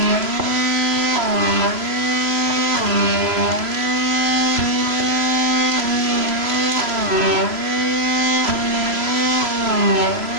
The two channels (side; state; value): left; late; 3.0 ms